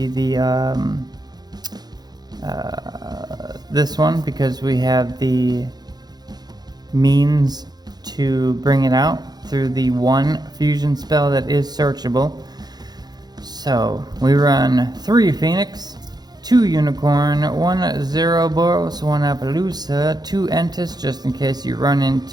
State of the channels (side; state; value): left; late; 0.19 ms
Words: the this one, because we have the means to bring it out. through the one fusion spell that is searchable. So we run 3 Phoenix, 2 Unicorn, 1 Zeroboros, 1 Appaloosa, 2 Entis, just in case you run